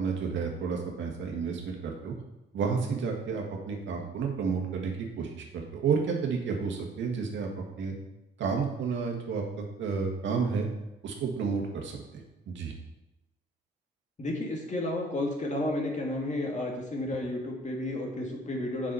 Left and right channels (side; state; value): left; quieter; 3.1 dB